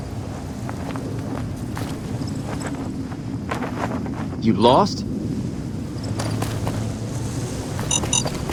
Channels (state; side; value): identical; both; correlation 1.00